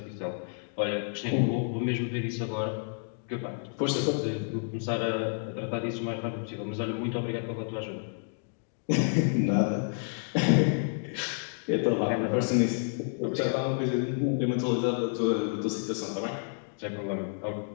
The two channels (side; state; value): right; silent; 58 dB below the other